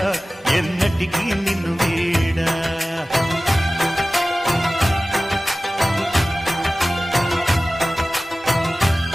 ఎన్నటికీ నిన్ను వీడా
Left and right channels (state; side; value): normal; both; correlation 0.97